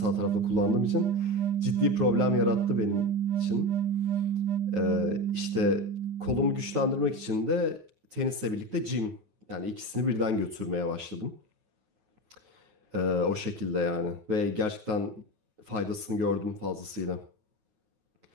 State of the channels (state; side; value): late; left; 9.3 ms